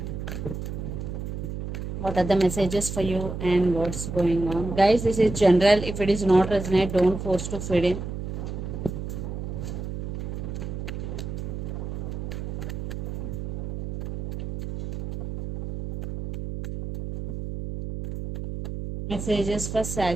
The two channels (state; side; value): noise; right; hum, 6 dB below the sound